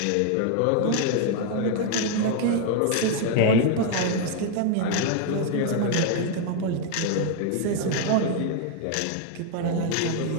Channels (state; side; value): different; both; correlation 0.00